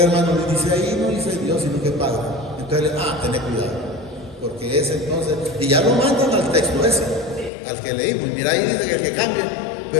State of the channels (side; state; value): right; drops out; at 7.5 s